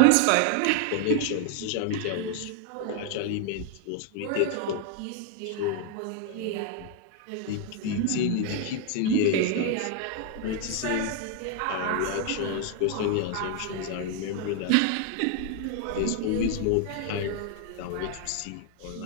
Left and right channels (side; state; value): both; different; correlation 0.00